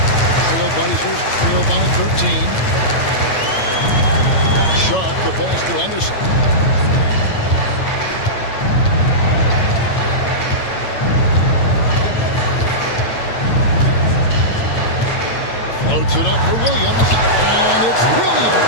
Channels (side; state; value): right; late; 8.9 ms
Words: Trailblazers trail by 13. Sharp the pass to Henderson. Floats it up for Williams, and it's